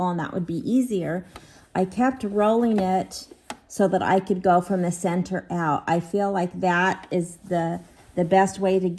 and that would be easier, I kept rolling it so that I could go from the center out. I feel like that is the best way to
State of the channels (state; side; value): identical; both; correlation 1.00